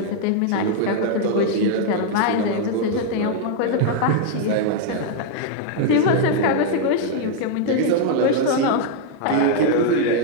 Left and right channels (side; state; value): both; different; correlation 0.00